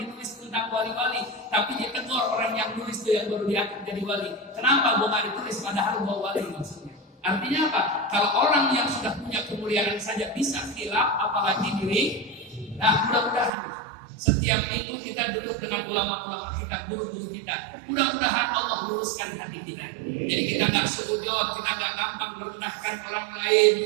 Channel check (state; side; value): drops out; left; at 13.5 s